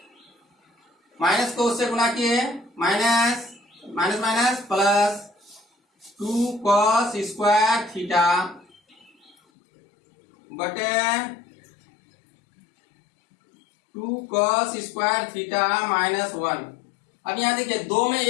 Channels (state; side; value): drops out; right; at 9.3 s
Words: माइनस को उससे गुना किए minus, minus minus plus 2 cos square theta बटे 2 कॉस स्क्वायर थीटा माइनस 1। अब यहां देखिए 2 में